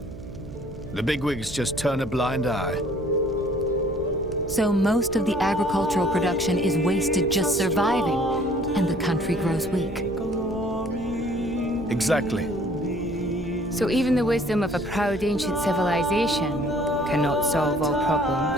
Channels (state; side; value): noise; right; hum, 14 dB below the sound